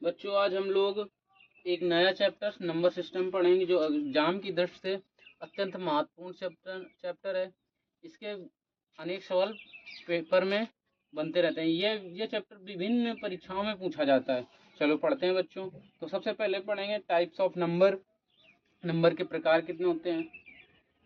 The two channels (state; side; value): identical; both; correlation 1.00